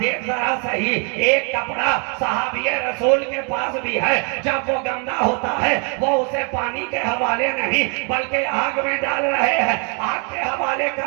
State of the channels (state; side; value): quieter; left; 37.1 dB